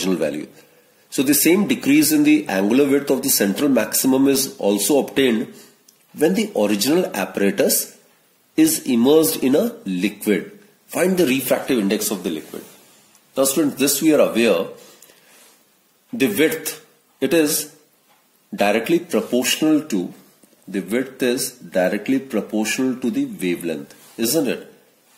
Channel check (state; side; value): identical; both; correlation 1.00